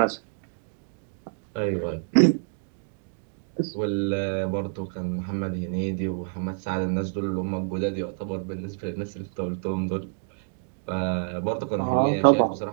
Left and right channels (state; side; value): silent; left; 60 dB below the other